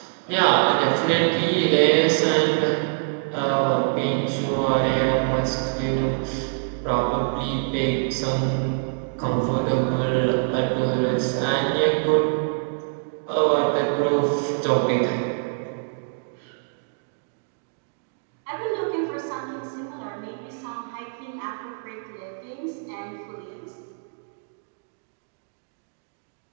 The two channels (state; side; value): silent; left; digital silence